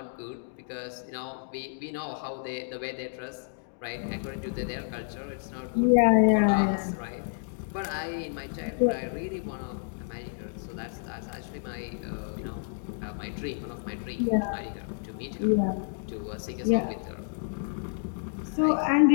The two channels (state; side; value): silent; right; digital silence